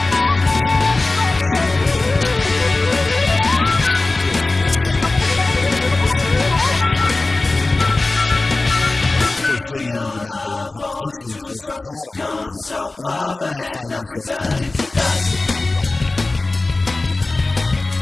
thick. Soon the rhythm is accompanied by guitars and synths, and for a split second you might think you are listening to a B-side latter-day Opeth tune. Of course, then you remember how much influence Wilson had on Opeth, and then you might find yourself contemplating the European rock inbreeding, but I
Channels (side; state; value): right; quieter; 3.2 dB